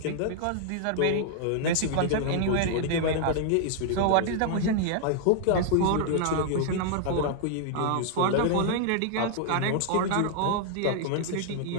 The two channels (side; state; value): both; different; correlation -0.01